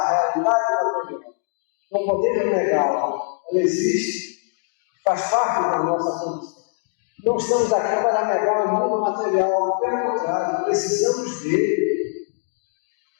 realidade da vida. Não podemos negá-la. Ela existe, faz parte da nossa condição. Não estamos aqui para negar o mundo material, pelo contrário, precisamos dele.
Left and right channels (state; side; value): silent; right; digital silence